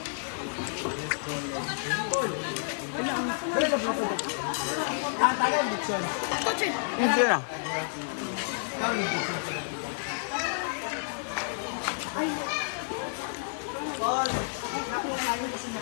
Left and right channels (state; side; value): silent; right; 57 dB below the other